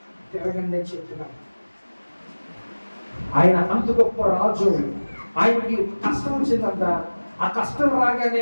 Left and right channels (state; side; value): inverted; both; correlation -1.00